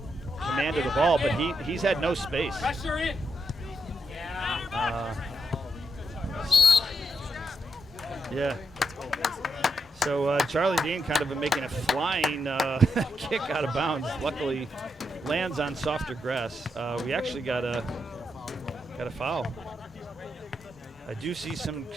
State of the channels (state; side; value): normal; both; correlation 0.81